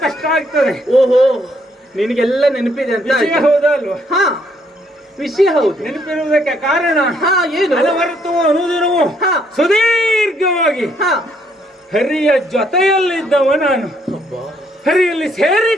ಕಷ್ಟ ಆಗ್ತದೆ. ಓಹೋ, ನಿನಗೆಲ್ಲ ನೆನಪಿದೆ ಅಂತ ವಿಷಯ ಹೌದಾ ಅಲ್ವಾ? ವಿಷಯ ಹೌದು. ನೆನಪಿರುವುದಕ್ಕೆ ಕಾರಣ ಏನು? ಅನವರತವೂ ಅನುದಿನವೂ ಸುದೀರ್ಘವಾಗಿ ಹರಿಯ ಜೊತೆಯಲ್ಲಿದ್ದವ ನಾನು, ಹರಿಯಲ್ಲಿ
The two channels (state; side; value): normal; both; correlation 0.70